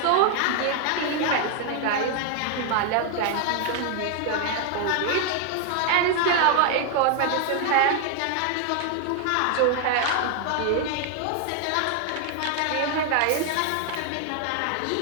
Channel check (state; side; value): different; both; correlation 0.00